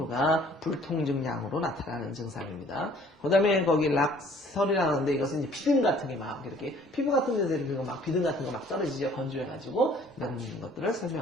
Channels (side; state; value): both; normal; correlation 0.56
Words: 불통증량으로 나타나는 증상입니다. 그 다음에 거기 락설이라고 하는데 이것은 이제 비듬 같은 게 막 이렇게 피부 같은 데서 이렇게 막 비듬 같은 거 막 떨어지죠. 건조해가지고 이런 것들을